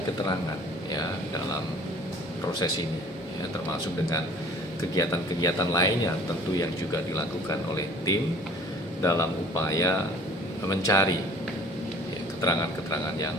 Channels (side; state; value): both; normal; correlation 0.51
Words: keterangan ya dalam proses ini ya, termasuk dengan kegiatan-kegiatan lainnya tentu yang juga dilakukan oleh tim dalam upaya mencari ya, keterangan-keterangan yang